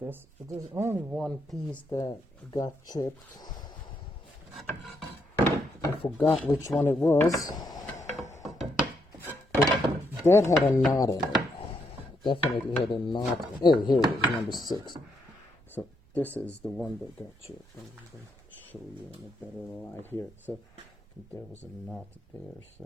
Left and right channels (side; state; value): both; normal; correlation 0.77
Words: But there's only one piece that got chipped. I forgot which one it was. But that had a knot in it. Definitely had a knot. Oh, here it is, number 6. So this is the one that got chipped. I'm going to show you in a better light here. So there was a knot there.